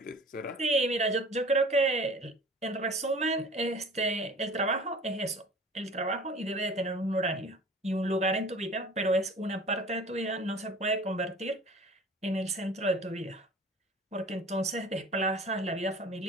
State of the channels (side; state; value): both; normal; correlation 0.44